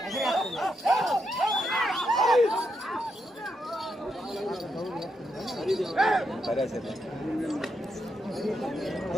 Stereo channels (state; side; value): normal; both; correlation 0.81